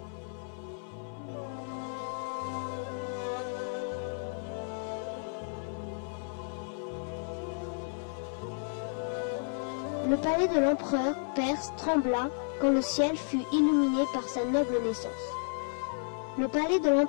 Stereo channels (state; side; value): silent; right; 56 dB below the other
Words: Le palais de l'empereur perse trembla quand le ciel fut illuminé par sa noble naissance. Le palais de